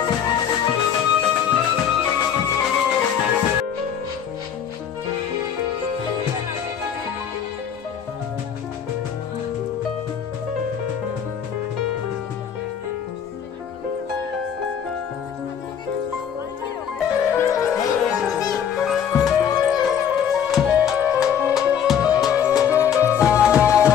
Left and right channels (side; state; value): right; quieter; 8.3 dB